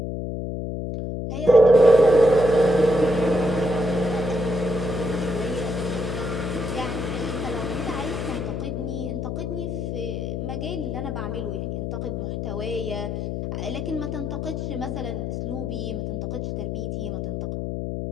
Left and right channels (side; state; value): left; noise; hum, 3 dB below the sound